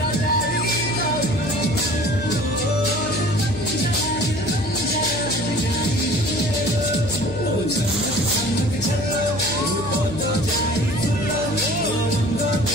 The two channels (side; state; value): left; noise; hum, 11 dB below the sound